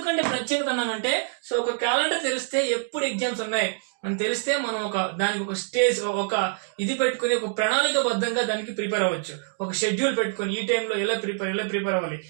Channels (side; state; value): left; silent; digital silence